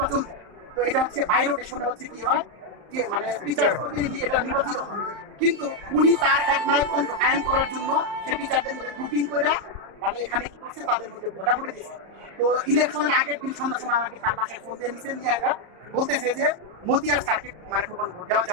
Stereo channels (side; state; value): left; late; 35 ms